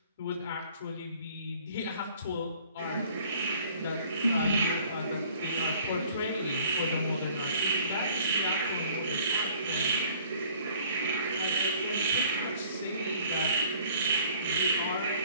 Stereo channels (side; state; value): both; inverted; correlation -0.55